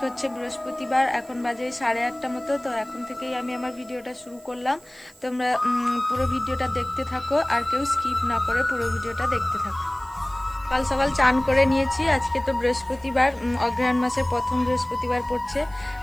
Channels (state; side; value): noise; right; hiss, 26 dB below the sound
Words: হচ্ছে বৃহস্পতিবার, এখন বাজে 8:30 মতো। তো এখন থেকেই আমি আমার ভিডিওটা শুরু করলাম। তোমরা পুরো ভিডিওটা দেখতে থাকো আর কেউ স্কিপ না করে পুরো ভিডিওটা দেখতে থাকো। সকাল সকাল চান করে নিয়েছি। আজকে তো বৃহস্পতিবার, অগ্রহায়ণ মাসের প্রথম বৃহস্পতিবার পড়ছে।